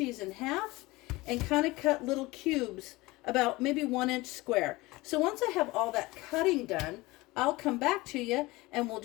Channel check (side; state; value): right; quieter; 21.2 dB